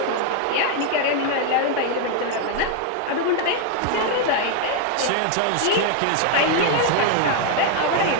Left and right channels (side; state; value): both; different; correlation 0.00